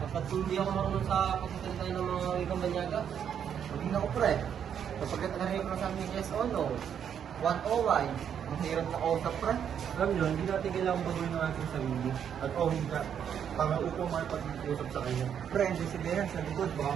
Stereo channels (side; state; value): left; quieter; 8.5 dB